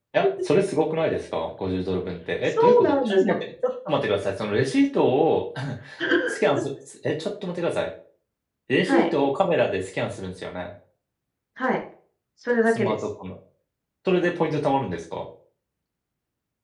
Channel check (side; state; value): both; identical; correlation 1.00